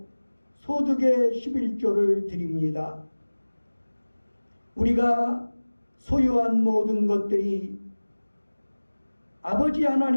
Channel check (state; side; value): inverted; both; correlation -1.00